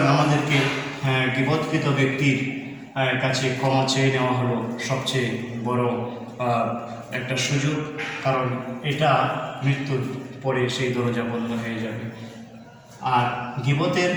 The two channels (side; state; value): both; identical; correlation 1.00